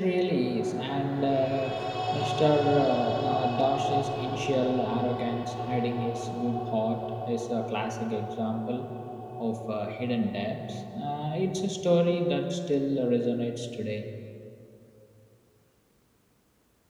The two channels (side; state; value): both; identical; correlation 1.00